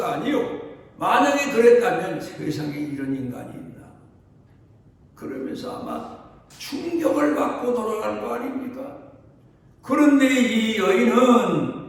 아니요. 만약에 그랬다면 세상에 이런 인간이 있나? 그러면서 아마 충격을 받고 돌아갈 거 아닙니까? 그런데 이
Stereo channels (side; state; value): both; identical; correlation 1.00